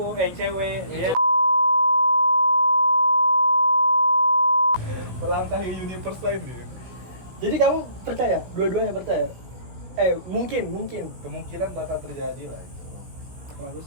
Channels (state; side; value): late; left; 17 ms